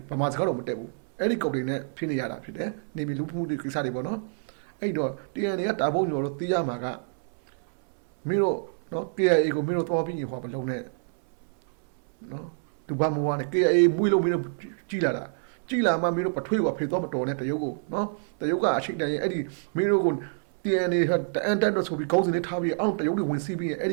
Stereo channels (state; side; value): silent; left; 60 dB below the other